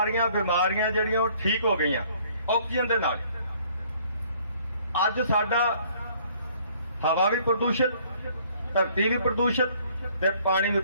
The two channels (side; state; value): both; inverted; correlation -0.60